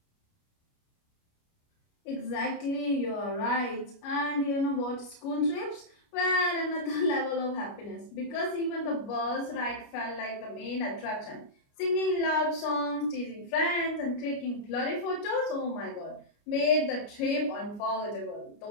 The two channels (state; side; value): late; right; 29 ms